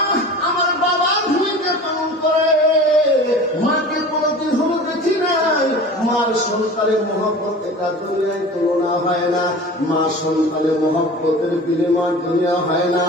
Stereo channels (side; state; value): both; normal; correlation 0.38